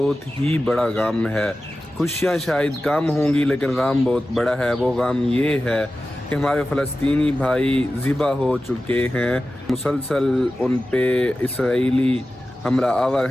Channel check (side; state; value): both; normal; correlation 0.94